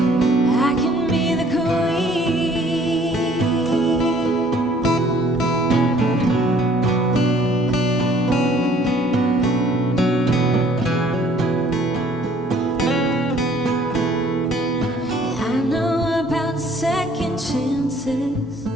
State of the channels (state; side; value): normal; both; correlation 0.58